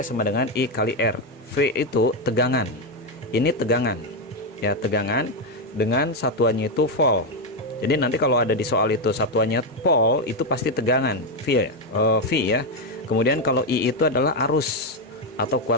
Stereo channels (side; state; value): both; normal; correlation 0.06